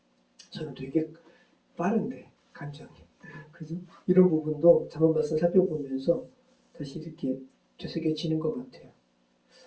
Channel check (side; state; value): both; identical; correlation 1.00